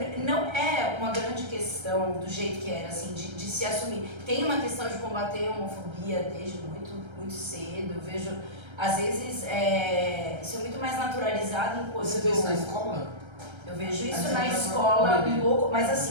é uma grande questão do jeito que era, assim, de se assumir. Tem uma questão de combater a homofobia desde muito, muito cedo. Eu vejo, às vezes, isso é muito mais naturalizado enquanto... Você vê isso na escola? Eu vejo isso na escola um pouco, mas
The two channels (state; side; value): late; left; 1.3 ms